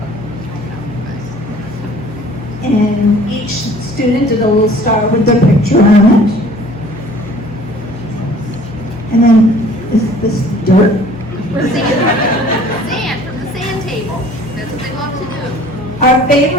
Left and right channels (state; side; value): normal; both; correlation 0.51